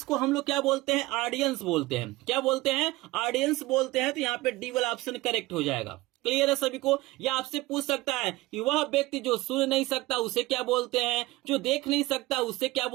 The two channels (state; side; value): quieter; left; 19.7 dB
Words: हम लोग क्या बोलते हैं, ऑडियंस बोलते हैं। क्या बोलते हैं, ऑडियंस बोलते हैं। तो यहाँ पे डी वाला ऑप्शन करेक्ट हो जाएगा। क्लियर है सभी को। या आपसे पूछ सकता है कि वह व्यक्ति जो सुन नहीं सकता उसे क्या बोलते हैं, जो देख नहीं सकता उसे क्या